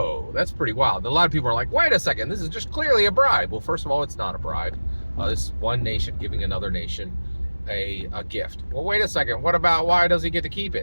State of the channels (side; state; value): both; inverted; correlation -1.00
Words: that's pretty wild. And a lot of people are like, wait a second, this is just clearly a bribe. Well, first of all, it's not a bribe. This is one nation giving another nation a gift. Well, wait a second, what about why does he get to keep